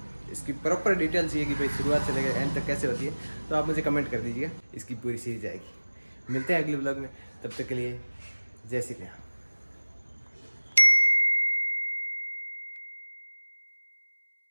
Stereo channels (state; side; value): inverted; both; correlation -1.00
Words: इसकी प्रॉपर डिटेल चाहिए कि भाई शुरुआत से लेकर एंड तक कैसे होती है, तो आप मुझे कमेंट कर दीजिएगा, इसकी पूरी सीरीज आएगी। मिलते हैं अगले ब्लॉग में, तब तक के लिए जय श्री राम।